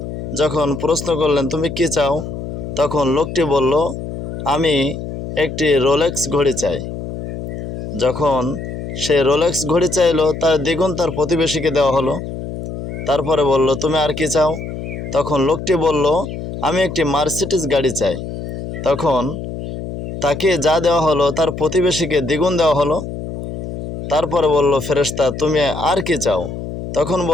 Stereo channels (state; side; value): noise; left; hum, 8 dB below the sound